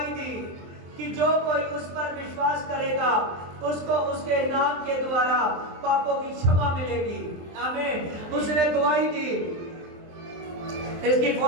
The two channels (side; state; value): left; late; 23 ms